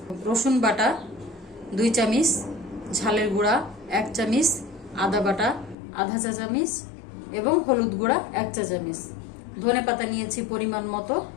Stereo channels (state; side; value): drops out; right; at 5.8 s